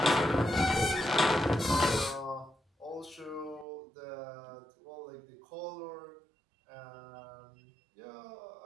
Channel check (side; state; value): left; drops out; at 3.7 s